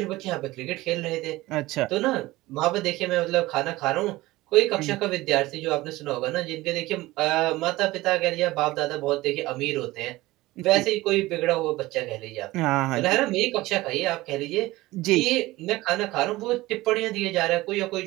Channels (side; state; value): left; quieter; 18.8 dB